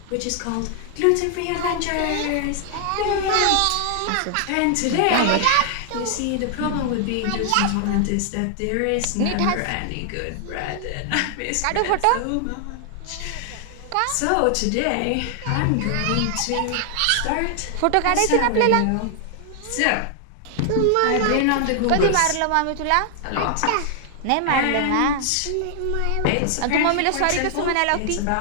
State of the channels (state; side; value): different; both; correlation 0.00